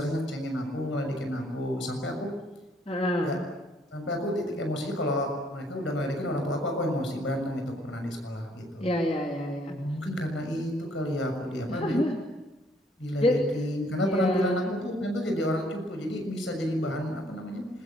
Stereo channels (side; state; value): both; normal; correlation 0.65